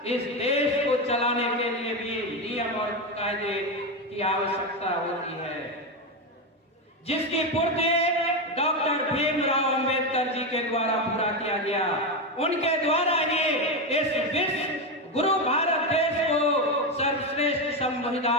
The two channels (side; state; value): both; normal; correlation 0.12